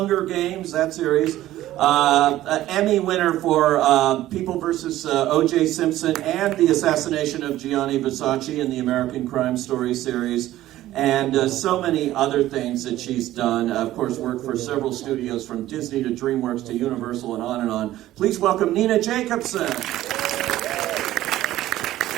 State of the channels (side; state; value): left; quieter; 14.5 dB